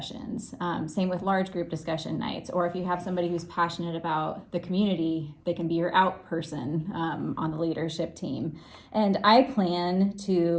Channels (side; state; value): both; identical; correlation 1.00